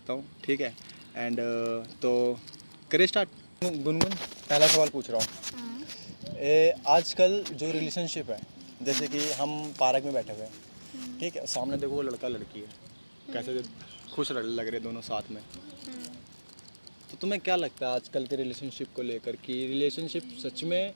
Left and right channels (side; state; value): both; inverted; correlation -1.00